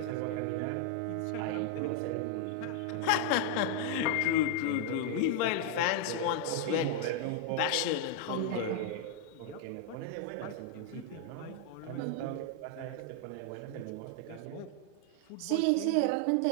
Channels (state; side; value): different; both; correlation 0.00